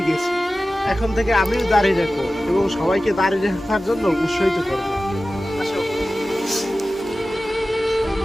গেছি। এখন থেকে আমিও দাঁড়িয়ে রাখবো এবং সবাইকে দাঁড়িয়ে রাখার জন্য উৎসাহিত করবো।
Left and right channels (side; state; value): both; normal; correlation 0.95